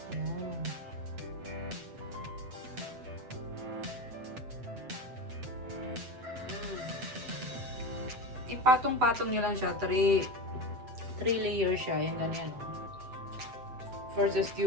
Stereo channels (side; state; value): left; late; 7.9 ms